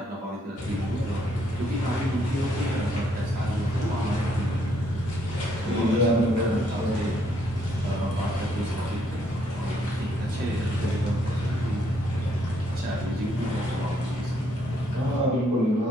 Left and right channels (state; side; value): normal; both; correlation 0.71